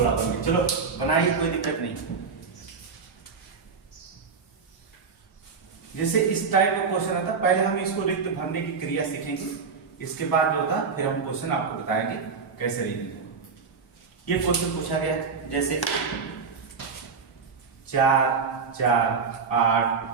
बन गया, चलो बनाइए, कोई दिक्कत नहीं। जैसे इस टाइप का क्वेश्चन आता, पहले हम इसको रिक्त भरने की क्रिया सीखेंगे, इसके बाद जो था फिर हम क्वेश्चन आपको बताएंगे कैसे रीडिंग। ये क्वेश्चन पूछा गया है, जैसे 4 4 8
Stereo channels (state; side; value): quieter; left; 5.3 dB